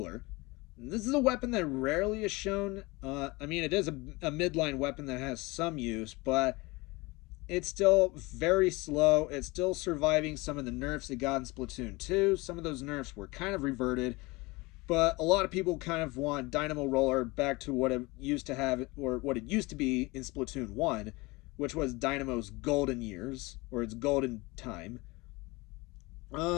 This is a weapon that rarely is shown. I mean, it is a midline weapon that has some use, but it's still very slow. It's still surviving some of the nerfs it got in Splatoon 2. Some of those nerfs were kind of reverted, but a lot of people kind of want Dynamo Roller back to what it used to have, or what it used to be in Splatoon 1, which was Dynamo's golden years, or its golden time.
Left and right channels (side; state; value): right; quieter; 23.8 dB